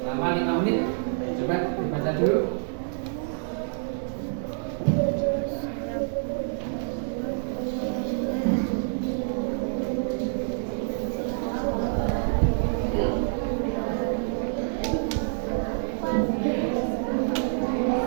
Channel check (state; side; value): silent; left; digital silence